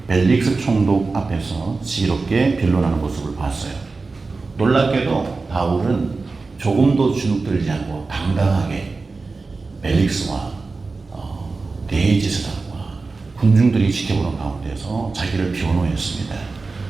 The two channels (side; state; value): left; quieter; 3.9 dB